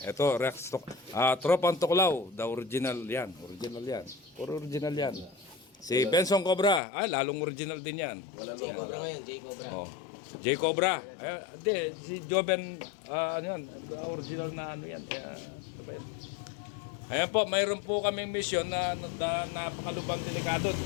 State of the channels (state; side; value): drops out; right; at 6.8 s